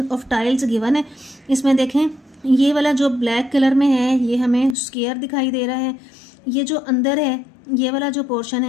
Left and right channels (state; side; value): drops out; right; at 4.8 s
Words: ऑफ टाइल्स गिवन है। इसमें देखें ये वाला जो ब्लैक कलर में है ये हमें स्क्वायर दिखाई दे रहा है। ये जो अंदर है ये वाला जो पोर्शन